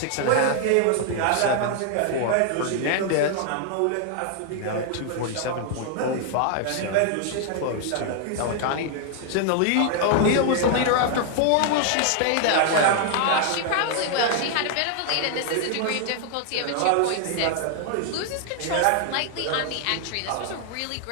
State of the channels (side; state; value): both; different; correlation 0.00